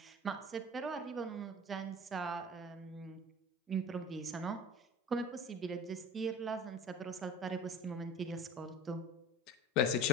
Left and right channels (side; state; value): both; normal; correlation 0.37